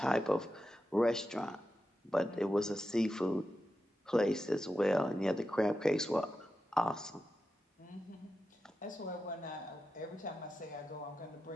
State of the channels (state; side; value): normal; both; correlation 0.90